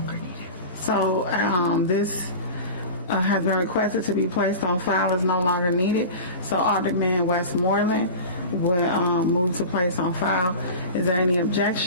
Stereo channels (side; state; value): both; inverted; correlation -0.33